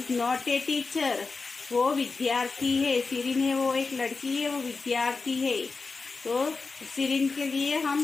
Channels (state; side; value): quieter; right; 4.2 dB